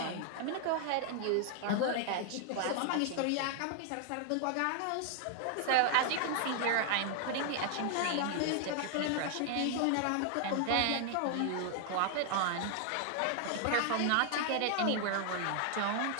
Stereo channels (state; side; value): different; both; correlation 0.00